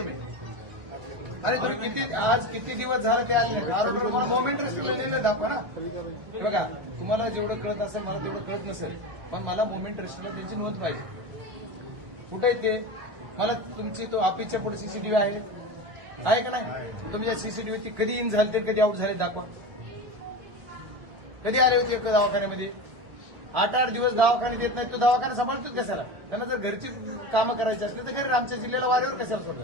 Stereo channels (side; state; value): left; late; 1.1 ms